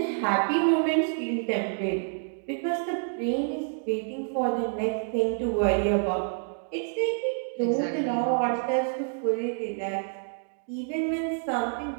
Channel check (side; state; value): left; silent; digital silence